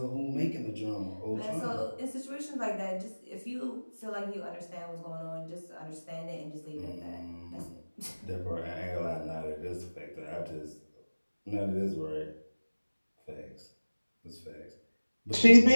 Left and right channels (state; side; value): inverted; both; correlation -1.00